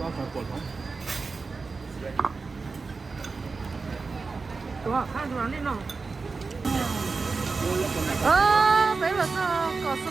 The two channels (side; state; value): left; quieter; 4.3 dB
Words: Đúng rồi, hai đứa lên nào. Đấy là có